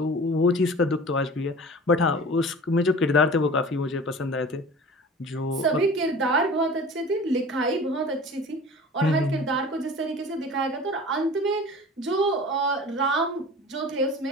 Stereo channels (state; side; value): normal; both; correlation 0.40